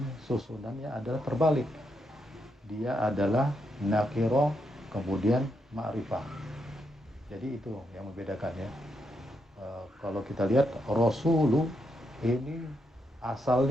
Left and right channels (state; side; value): normal; both; correlation 0.81